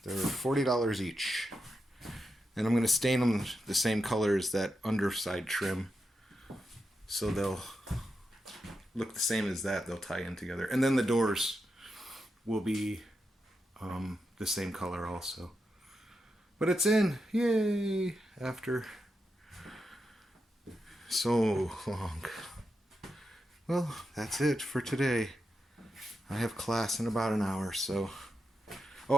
They're $40 each. And I'm gonna stain them the same color as that underside trim, so they'll look the same as that. They'll tie in together. And then the doors will be the same color also. But it's in. Yay! After so long. Well, that's it for today. I have class in about an hour, so...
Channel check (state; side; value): normal; both; correlation 0.87